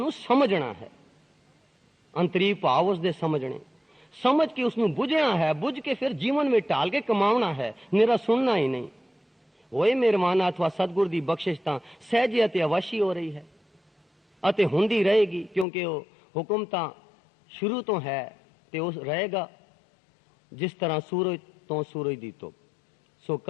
समझना है, अंतरी भाव उसदे समझने, समझ के उसनू बुझना है, बुझ के फिर जीवन में ढाल के कमावना है, निरा सुनना ही नहीं। होए मेहरबाना अथवा सतगुर दी बख्शिश तां सहजे अते अवश्य हो रही है अते हुंदी रहेगी, क्योंकि वो हुक्म तां शुरू तो है ते उस रहेगा। जिस तरह सूरज तो सूरज दी धुप। सो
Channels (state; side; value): drops out; right; at 15.7 s